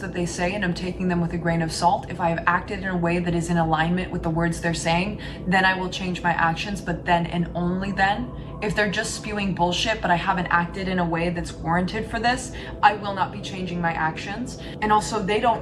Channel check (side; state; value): both; identical; correlation 1.00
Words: they say and I'm taking them with a grain of salt. If I have acted in a way that is in alignment with the words they're saying, then I will change my actions. But then and only then, if they're just spewing bullshit, but I haven't acted in a way that's warranted for this, I will not be changing my actions. And also, they